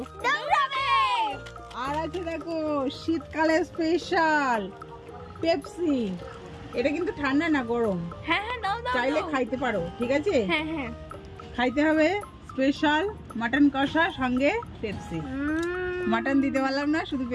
আর আছে দেখো শীতকালে স্পেশাল পেপসি। এটা কিন্তু ঠান্ডা না, গরম। চাইলে খাইতে পারো, ঠিক আছে? খাইতে হবে। স্পেশাল মাটন কষা সঙ্গে পেপসি। মাটন দিতে পারলাম না, শুধু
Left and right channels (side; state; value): both; identical; correlation 1.00